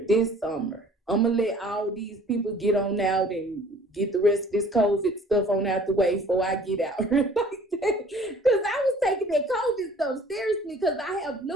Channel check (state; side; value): normal; both; correlation 0.52